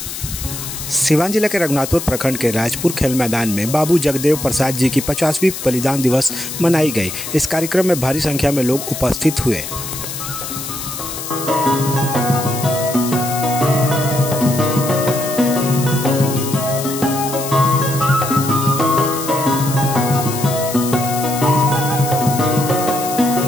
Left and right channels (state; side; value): noise; left; hiss, 8 dB below the sound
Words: सिवान जिला के रघुनाथपुर प्रखंड के राजपुर खेल मैदान में बाबू जगदेव प्रसाद जी की 50वीं बलिदान दिवस मनाई गई। इस कार्यक्रम में भारी संख्या में लोग उपस्थित हुए।